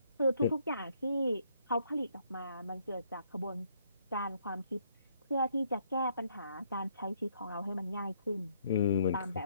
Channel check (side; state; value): both; inverted; correlation -0.69